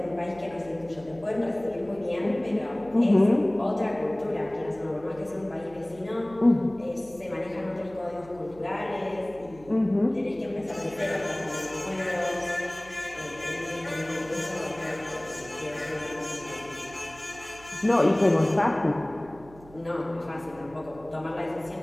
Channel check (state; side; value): noise; right; hum, 21 dB below the sound